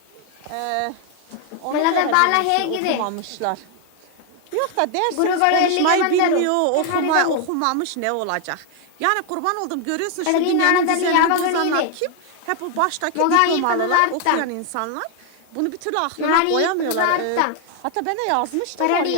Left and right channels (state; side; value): different; both; correlation 0.00